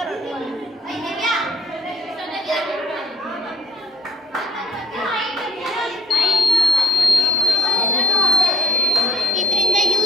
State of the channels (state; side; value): normal; both; correlation 0.59